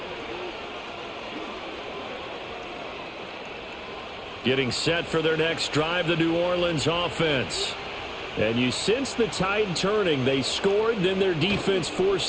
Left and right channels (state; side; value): identical; both; correlation 1.00